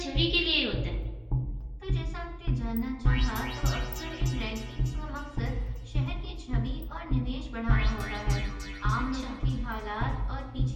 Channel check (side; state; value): both; identical; correlation 1.00